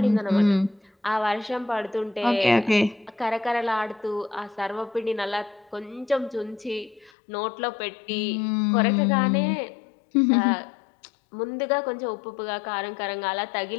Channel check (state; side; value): drops out; right; at 7.1 s